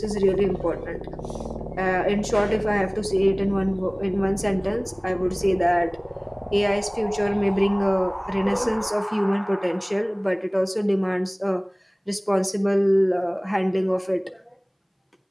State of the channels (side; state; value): both; identical; correlation 1.00